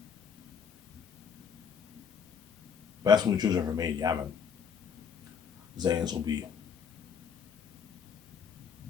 Best movie trilogy ever made. Yeah, man. Zane's will be.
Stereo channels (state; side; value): quieter; right; 6.9 dB